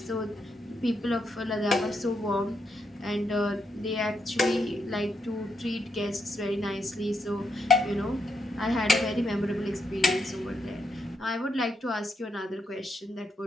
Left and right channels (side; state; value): both; normal; correlation 0.80